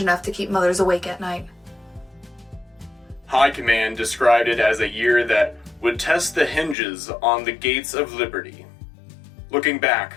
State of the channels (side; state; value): right; drops out; at 6.8 s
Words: enough to keep mothers awake at night. High Command described it as a year that would test the hinges on the gates of liberty. Looking back,